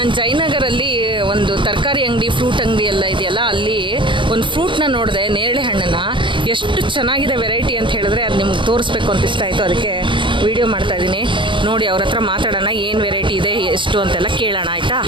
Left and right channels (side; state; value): left; late; 0.24 ms